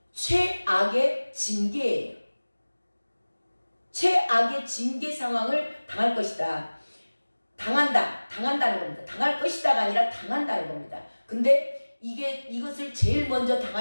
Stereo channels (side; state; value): both; inverted; correlation -1.00